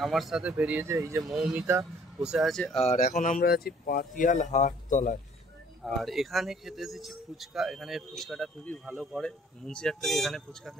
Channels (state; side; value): normal; both; correlation 0.58